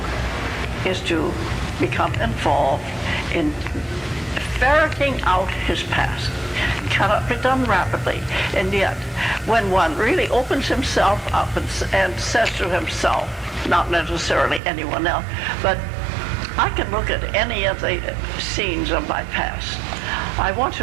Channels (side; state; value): left; drops out; at 14.6 s